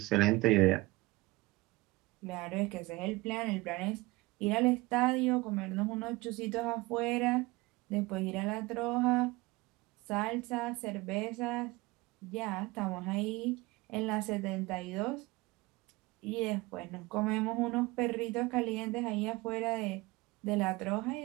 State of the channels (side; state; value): left; quieter; 21.7 dB